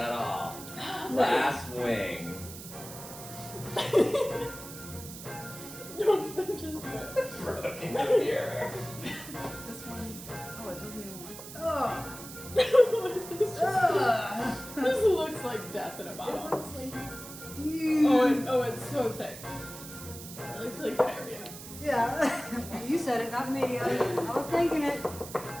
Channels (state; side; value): noise; right; hiss, 13 dB below the sound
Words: all. Last wing. Don't just do it. Broke into the mirror. This one. Oh, it doesn't even work. Oh. This looks like death in a bottle. Oh, it's so thick. It looks like diarrhea. Yeah. You said it, not me. I was thinking it.